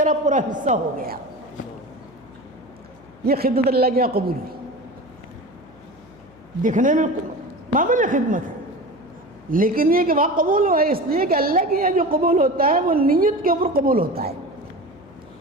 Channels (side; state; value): left; noise; hum, 26 dB below the sound